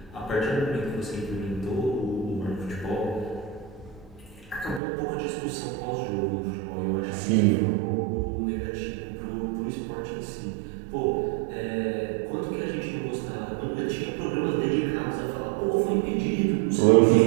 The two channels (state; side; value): drops out; left; at 4.8 s